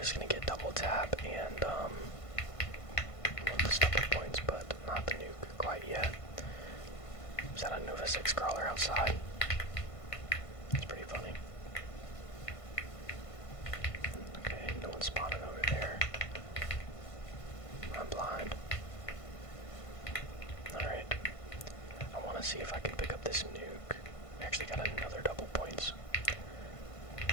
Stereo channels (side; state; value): right; late; 1.5 ms